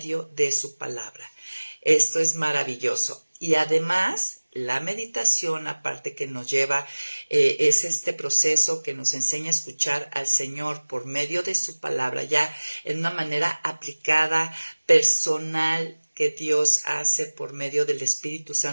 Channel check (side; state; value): both; inverted; correlation -1.00